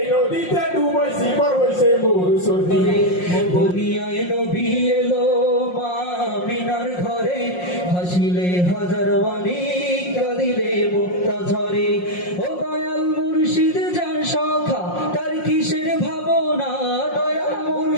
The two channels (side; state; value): right; late; 5.6 ms